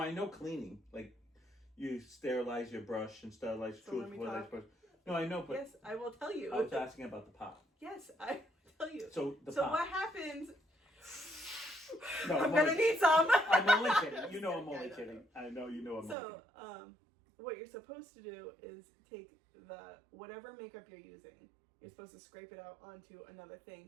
know cleaning. Like you sterilize your brush and sterilize So your let me tooth. talk. Brush. No, I know, but Yes, I will tell you. I was asking about the pot. Yes, I will tell you. So the So pot. what happens? No, I'm I'm gonna only- need some. I'm only kidding. You know I'm Yeah, only I know. kidding. I know you know I'm only So, kidding. what you're supposed to do is take whatever makeup you're using. You're supposed to scrape it out onto another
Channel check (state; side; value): drops out; left; at 16.2 s